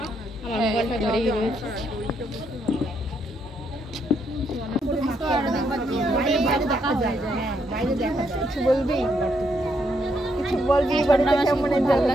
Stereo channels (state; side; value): normal; both; correlation 0.75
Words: আমার মোবাইলটা ধরেই রয়েছে। কিছু বলবি? কিছু বলবি? বাড়িতে কেমন এনজয়